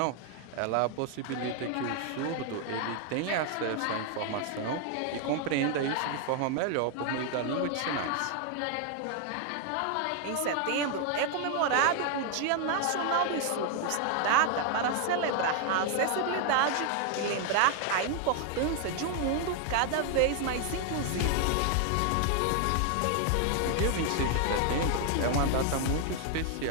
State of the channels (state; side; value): different; both; correlation 0.00